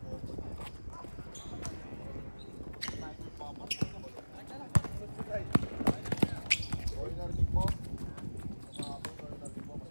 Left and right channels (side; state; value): both; inverted; correlation -1.00